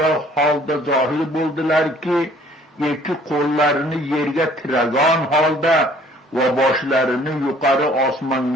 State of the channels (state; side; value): normal; both; correlation 0.56